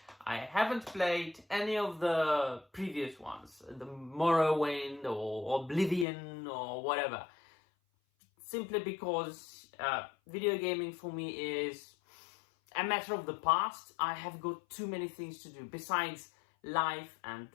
I haven't played any of the previous ones, the Morrowind or Oblivion or whatever, simply because video gaming for me is a matter of the past. I have got too many things to do besides life and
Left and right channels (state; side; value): drops out; right; at 6.1 s